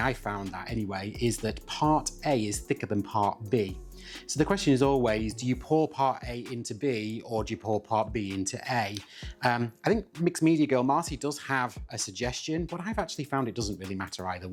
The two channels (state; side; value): identical; both; correlation 1.00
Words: found that anyway, is that part A is thicker than part B. So the question is always, do you pour part A into B, or do you pour part B into A? I think Mixed Media Girl Marcy does have a suggestion, but I've actually found it doesn't really matter either